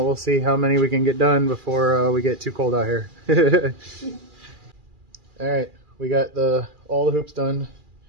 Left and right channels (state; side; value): late; left; 2.4 ms